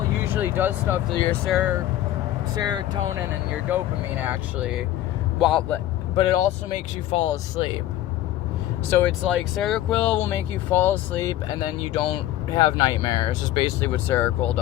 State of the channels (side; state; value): right; quieter; 13.7 dB